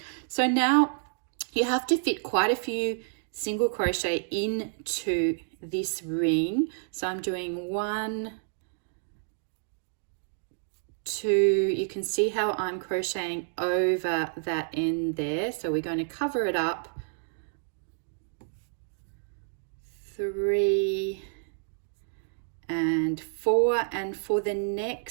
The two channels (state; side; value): silent; left; digital silence